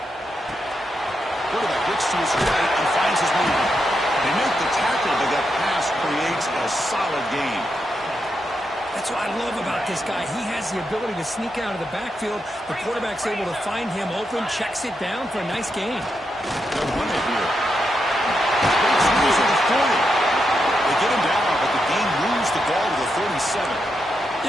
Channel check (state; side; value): normal; both; correlation 0.84